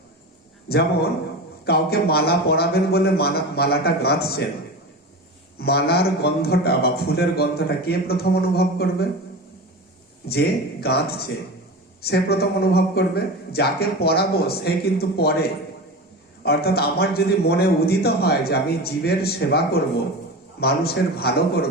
যেমন কাউকে মালা পরাবেন বলে মালাটা গাঁথছেন, মালার গন্ধটা বা ফুলের গন্ধটা কে প্রথম অনুভব করবে, যে গাঁথছে সে প্রথম অনুভব করবে, যাকে পরাবো সে কিন্তু পরে। অর্থাৎ আমার যদি মনে উদিত হয় যে আমি জীবের সেবা করব, মানুষের ভালো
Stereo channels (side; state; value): both; normal; correlation 0.28